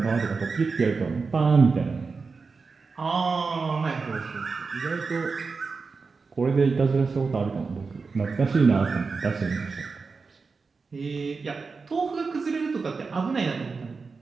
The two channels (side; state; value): left; quieter; 4.6 dB